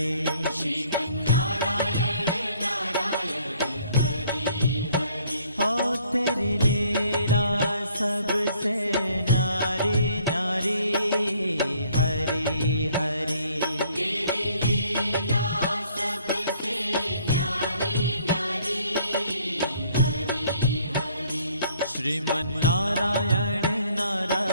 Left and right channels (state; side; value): inverted; both; correlation -0.61